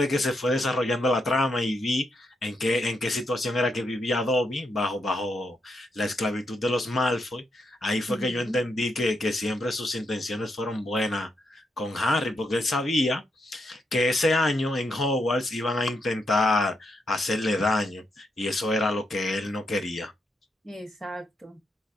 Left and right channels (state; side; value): normal; both; correlation 0.81